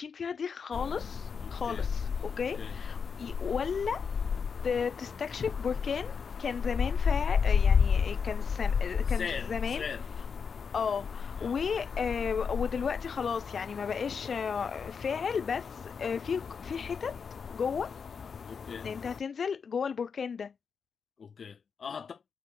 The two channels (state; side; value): quieter; right; 6.1 dB